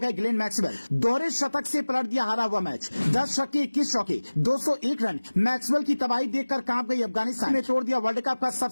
ग्लेन मैक्सवेल। दोहरे शतक से पलट दिया हारा हुआ मैच। 10 छक्के 21 चौके 201 रन। मैक्सवेल की तबाही देखकर कांप गई अफगानिस्तान ने तोड़ दिया वर्ल्ड कप का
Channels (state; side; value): inverted; both; correlation -1.00